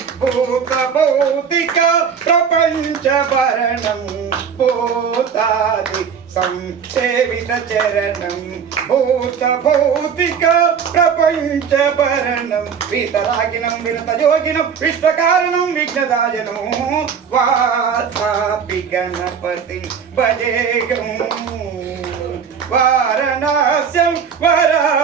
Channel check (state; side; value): quieter; left; 6.9 dB